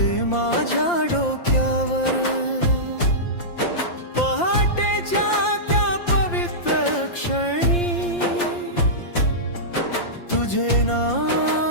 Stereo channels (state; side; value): late; right; 5.7 ms